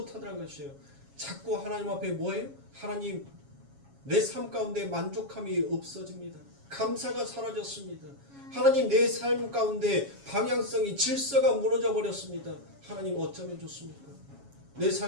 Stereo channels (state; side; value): late; left; 7.2 ms